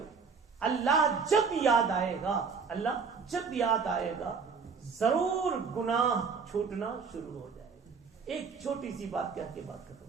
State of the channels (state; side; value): quieter; left; 5.5 dB